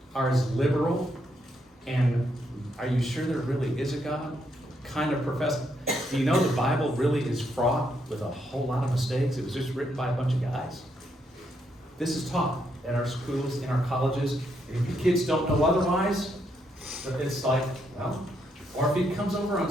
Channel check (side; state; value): both; normal; correlation 0.77